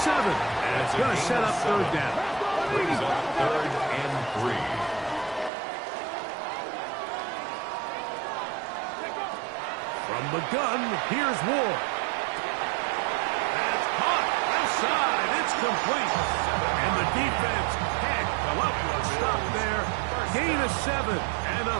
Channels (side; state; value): left; drops out; at 5.5 s